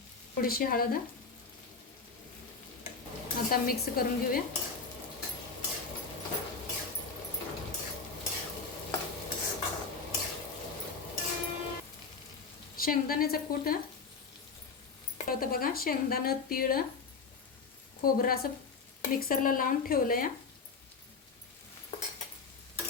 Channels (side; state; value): right; quieter; 4.8 dB